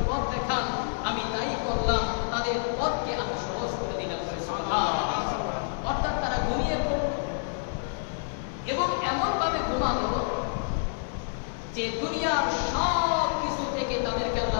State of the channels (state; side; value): silent; right; 59 dB below the other